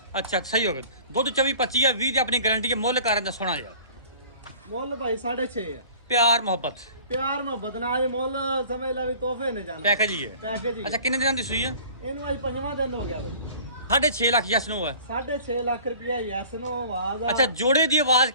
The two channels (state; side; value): inverted; both; correlation -0.47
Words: ਅੱਛਾ ਸਹੀ ਹੋ ਗਿਆ ਦੁੱਧ 24-25 ਹੈ 20 ਦੀ ਆਪਣੀ ਗਾਰੰਟੀ ਹੈ ਮੁੱਲ ਕਰਨ ਦਾ ਸੋਹਣਾ ਯਾਰ ਮੁੱਲ ਭਾਈ 6.5 ਆ ਪਿਆਰ ਮੁਹੱਬਤ ਪਿਆਰ ਮੁਹੱਬਤ ਨਾਲ ਇਹ ਮੁੱਲ ਸਮਝ ਲਾ ਵੀ ਤੋਹਫੇ ਨੇ ਜਾਣਾ ਪੈਕੇਜ ਹੀ ਹੈ ਪੈਕੇਜ ਹੀ ਅੱਛਾ ਕਿੰਨੇ ਦਿਨਾਂ ਦੀ ਸੂਈ ਹੈ ਇਹਨੂੰ ਅੱਜ 5ਵਾਂ ਦਿਨ ਹੋ ਗਿਆ ਬਈ 6.5 ਲੱਖ ਯਸ ਨੂੰ ਹੈ 6.5 ਲੱਖ ਰੁਪਇਆ ਯੈਸ ਨੂੰ ਆਵਾਜ਼ ਆ ਅੱਛਾ ਜੋੜੇ ਦੀ ਆਵਾਜ਼